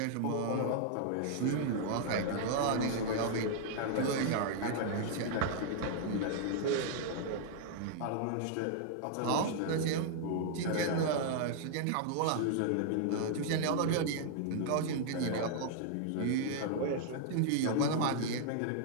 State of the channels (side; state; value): both; different; correlation -0.01